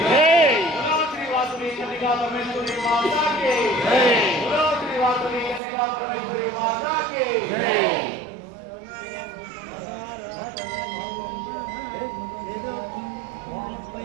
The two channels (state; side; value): drops out; left; at 5.6 s